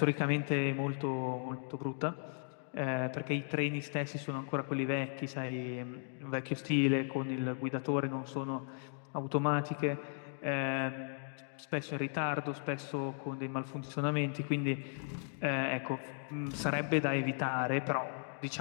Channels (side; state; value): right; silent; digital silence